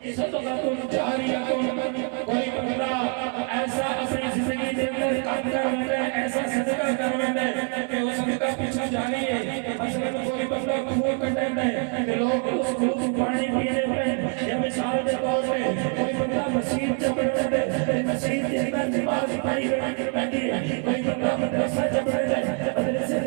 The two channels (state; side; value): quieter; left; 35.9 dB